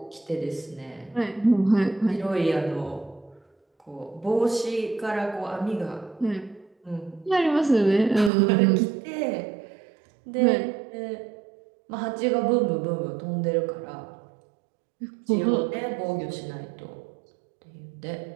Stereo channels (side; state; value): left; drops out; at 8.3 s